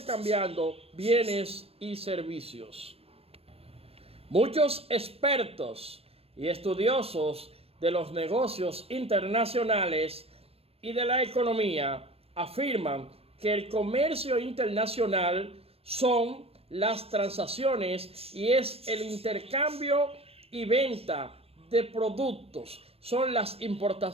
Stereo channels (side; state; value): left; late; 0.28 ms